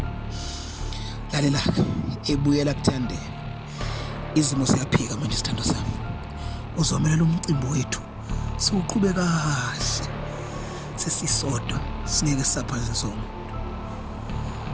Lalela ebuyela kuthandeka. Izimo siyaphika manje sithando sami. Uzomelela umcimbi wethu. Siuqhube kahle. Sesisodwa singeke saphaze sonke.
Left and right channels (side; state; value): both; identical; correlation 1.00